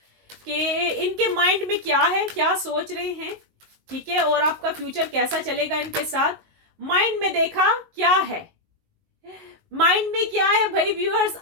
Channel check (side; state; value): left; late; 19 ms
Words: कि इनके माइंड में क्या है, क्या सोच रहे हैं। ठीक है, और आपका फ्यूचर कैसा चलेगा इनके साथ। माइंड में देखा क्या है, माइंड में क्या है भाई व्यूअर्स,